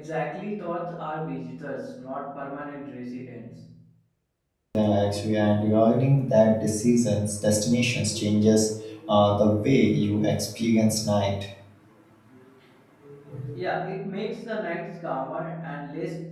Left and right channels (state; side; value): identical; both; correlation 1.00